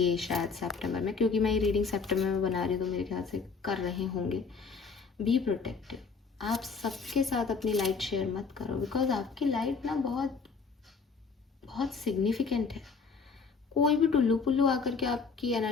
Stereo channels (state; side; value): quieter; right; 5.0 dB